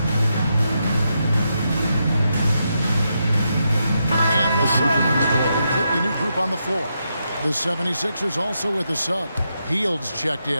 And the Suns with a completely new group on the floor. The 76ers also with a sub. Heald's checked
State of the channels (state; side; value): inverted; both; correlation -0.83